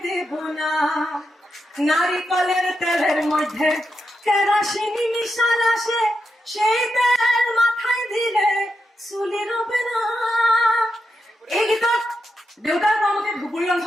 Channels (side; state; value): both; normal; correlation 0.86